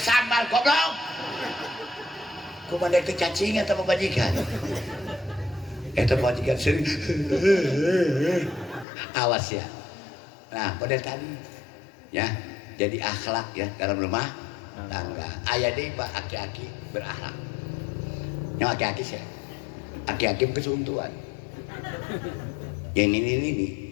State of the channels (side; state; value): right; drops out; at 8.8 s